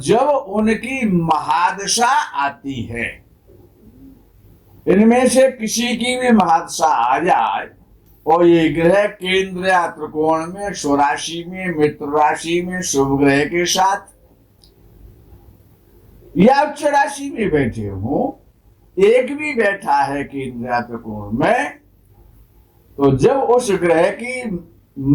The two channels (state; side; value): identical; both; correlation 1.00